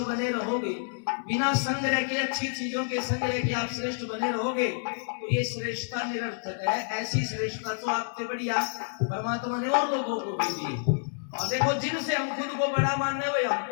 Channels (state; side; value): silent; right; digital silence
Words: बने रहोगे, बिना संग्रह के अच्छी चीजों के संग्रह के आप श्रेष्ठ बने रहोगे, तो ये श्रेष्ठता निरर्थक है। ऐसी श्रेष्ठता तो आपसे बढ़िया परमात्मा ने और लोगों को भी दी। और देखो, जिनसे हम खुद को बड़ा मानने वही हम